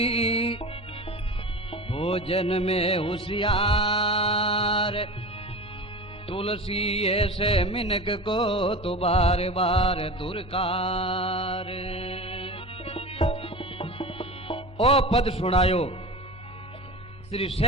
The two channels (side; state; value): both; normal; correlation 0.32